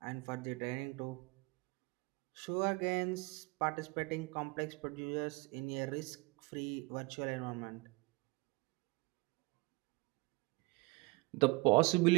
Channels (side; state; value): left; quieter; 26.6 dB